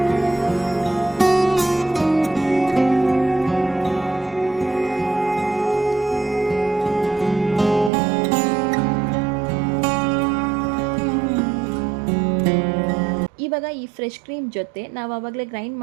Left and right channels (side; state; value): left; drops out; at 7.9 s